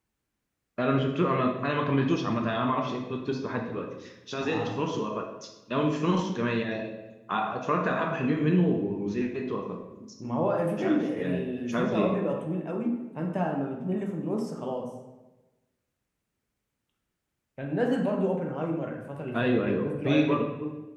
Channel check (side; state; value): both; identical; correlation 1.00